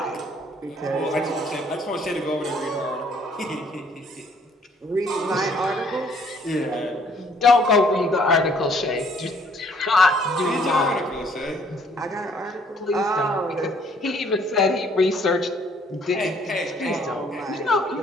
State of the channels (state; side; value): normal; both; correlation 0.62